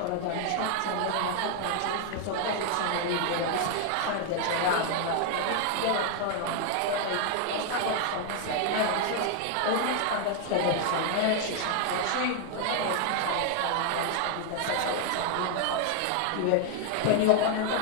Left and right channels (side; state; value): both; different; correlation 0.00